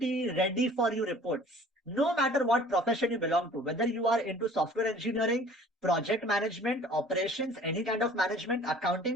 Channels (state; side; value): normal; both; correlation 0.50